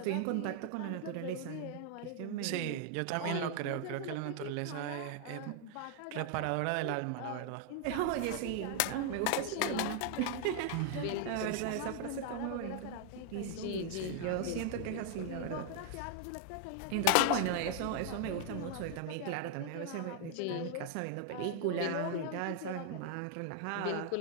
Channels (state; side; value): different; both; correlation 0.00